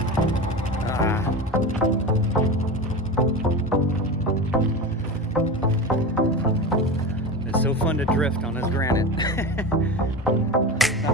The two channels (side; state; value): both; normal; correlation 0.25